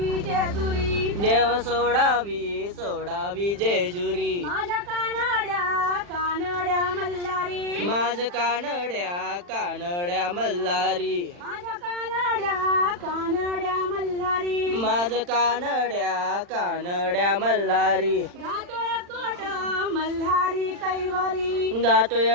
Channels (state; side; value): late; left; 40 ms